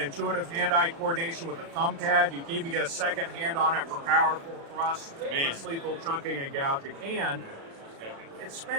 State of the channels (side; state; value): left; late; 36 ms